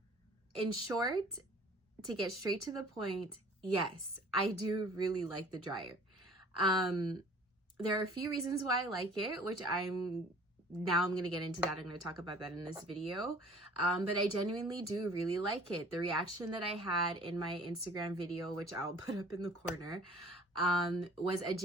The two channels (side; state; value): both; normal; correlation 0.50